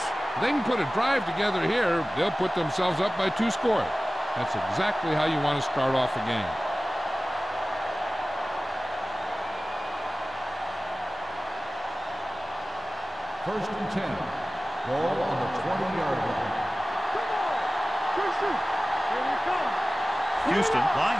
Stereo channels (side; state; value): both; normal; correlation 0.97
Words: If they can put a drive together here, they'll put themselves up by 2 scores. That's exactly how you want to start off a game. First and 10. Ball on the 20-yard line. Come on! Christian! Here we come! Houston